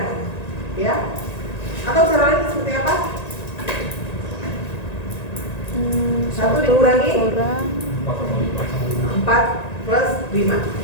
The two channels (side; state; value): right; late; 1.9 ms